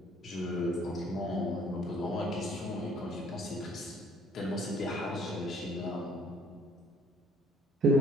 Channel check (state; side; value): normal; both; correlation 0.58